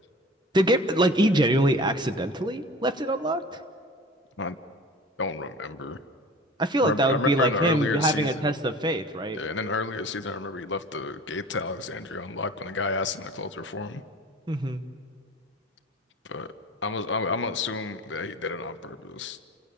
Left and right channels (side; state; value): both; normal; correlation 0.41